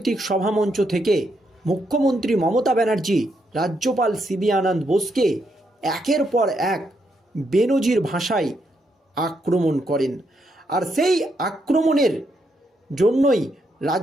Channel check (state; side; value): normal; both; correlation 0.78